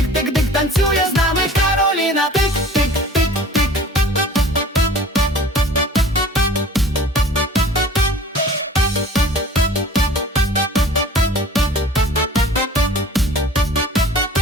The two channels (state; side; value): normal; both; correlation 0.46